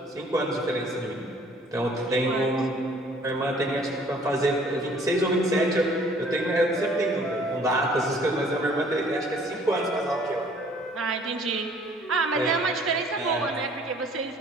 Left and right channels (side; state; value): both; normal; correlation 0.56